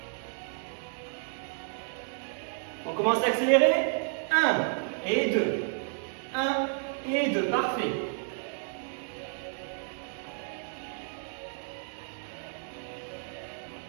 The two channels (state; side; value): silent; left; digital silence